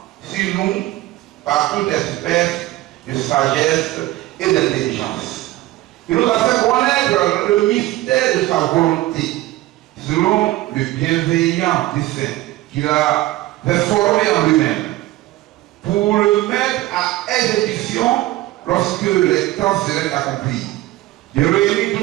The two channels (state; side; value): quieter; left; 16.9 dB